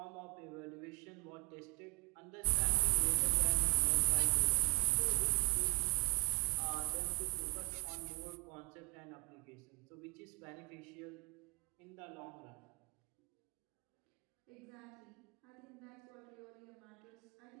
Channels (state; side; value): quieter; left; 32.9 dB